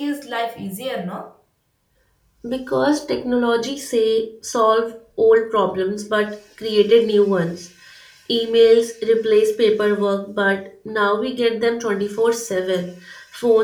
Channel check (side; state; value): both; identical; correlation 1.00